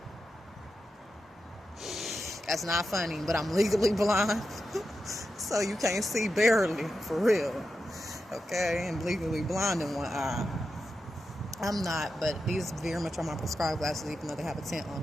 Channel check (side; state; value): both; normal; correlation 0.89